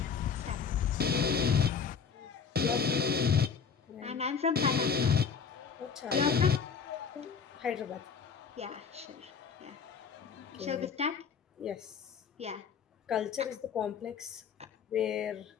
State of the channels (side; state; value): right; quieter; 6.2 dB